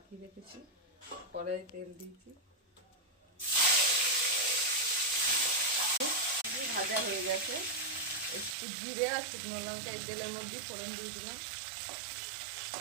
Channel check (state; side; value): drops out; left; at 8.6 s